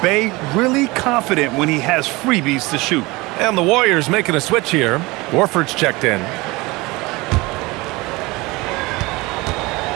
Bey really confident when he has freebies to shoot. And the Warriors making a switch here. Warford's checked in.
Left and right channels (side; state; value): left; quieter; 22.8 dB